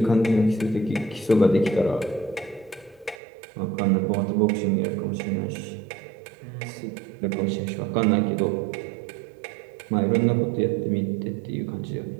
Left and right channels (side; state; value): left; drops out; at 3.2 s